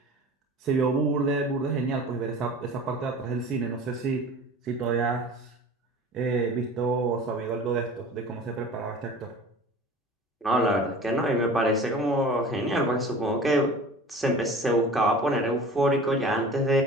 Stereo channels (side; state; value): both; normal; correlation 0.41